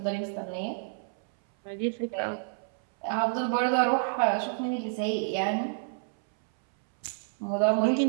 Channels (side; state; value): left; silent; 59 dB below the other